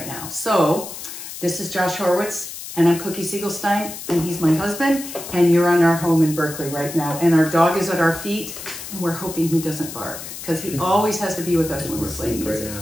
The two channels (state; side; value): noise; left; hiss, 10 dB below the sound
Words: now. So, this is Josh Horowitz, and I'm Cookie Segelstein, and he's my husband, and you're on our home in Berkeley right now. And our dog is at our feet, and we're hoping he doesn't bark, because he always has to be with us when we're playing music.